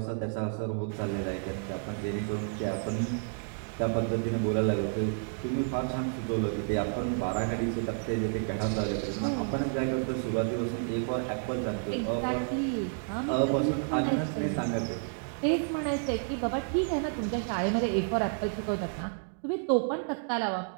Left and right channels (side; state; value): left; silent; 57 dB below the other